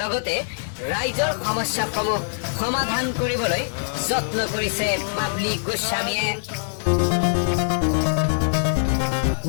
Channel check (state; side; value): silent; right; digital silence